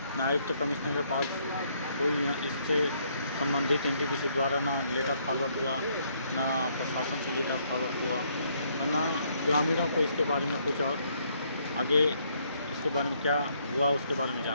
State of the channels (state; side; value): inverted; both; correlation -0.70